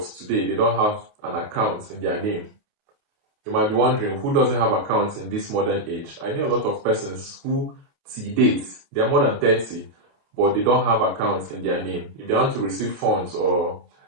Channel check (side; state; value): left; late; 28 ms